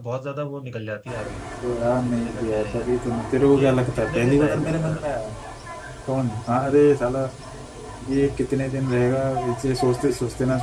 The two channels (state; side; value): identical; both; correlation 1.00